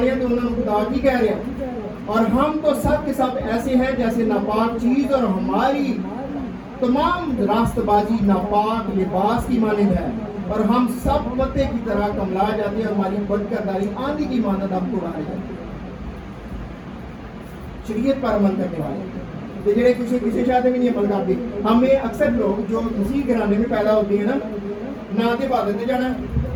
ہے تو انہوں نے خدا کی کہہ رہے ہیں. اور ہم تو سب کے سب ایسے ہیں جیسے ناپاک چیز, اور ہماری تمام راست بازی ناپاک لباس کی مانند ہے, اور ہم سب پتے کی طرح کملا جاتے ہیں, اور ہماری بد کرداری آندھی کی مانند ہم کو اڑائے جاتے ہیں. شریعت پر عمل کرنے والے تو جڑے کسی شاید بھی نہیں عمل کرتے. ہمیں اکثر لوگ جو مسیح گھرانے میں پیدا ہوتے ہیں نا, نہ تو عبادت میں جانا,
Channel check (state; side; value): identical; both; correlation 1.00